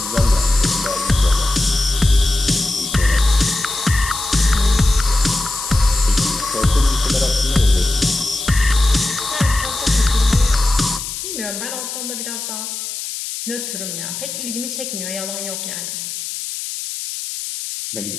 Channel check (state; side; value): noise; left; hiss, 7 dB below the sound